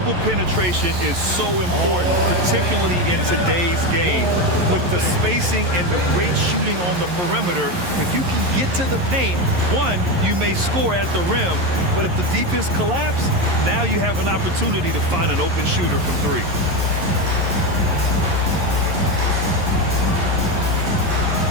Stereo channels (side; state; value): left; late; 11 ms